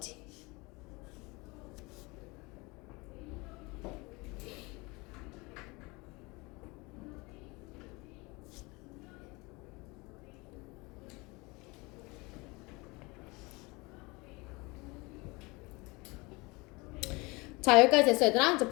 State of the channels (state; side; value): quieter; right; 25.3 dB